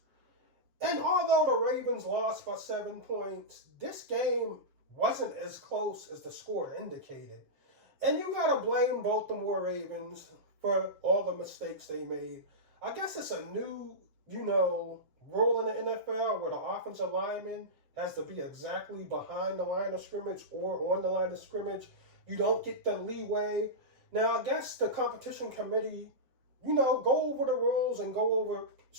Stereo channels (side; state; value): left; late; 7.5 ms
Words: And although the Ravens lost by 7 points, this game wasn't as close as the score indicated. And you got to blame Baltimore Ravens for all the mistakes they made. I guess it's a new, rule in the NFL where the offensive lineman has to be exactly behind the line of scrimmage or on the line of scrimmage. You don't get the leeway. Now, I guess the competition committee, go over the rules and go over